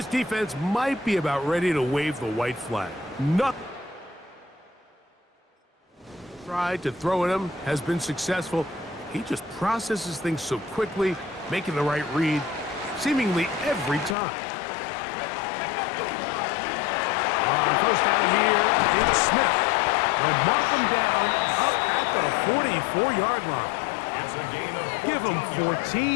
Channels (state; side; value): drops out; right; at 14.2 s